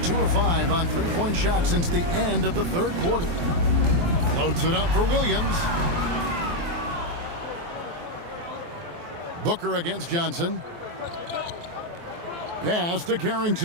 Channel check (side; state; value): left; late; 23 ms